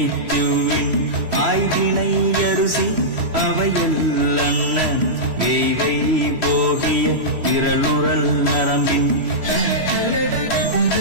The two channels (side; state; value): left; late; 3.0 ms